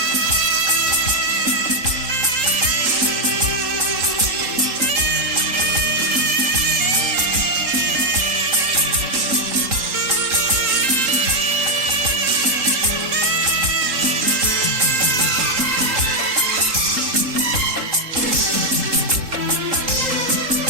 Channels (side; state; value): left; late; 3.8 ms